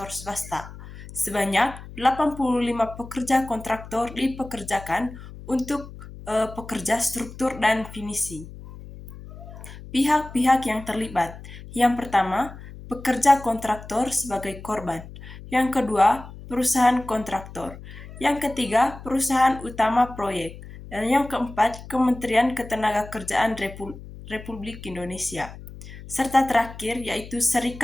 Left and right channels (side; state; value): left; noise; hum, 15 dB below the sound